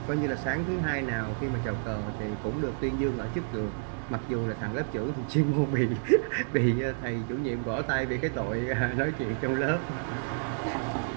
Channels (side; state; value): left; silent; digital silence